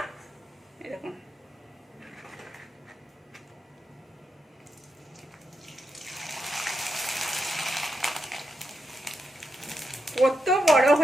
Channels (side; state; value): both; normal; correlation 0.85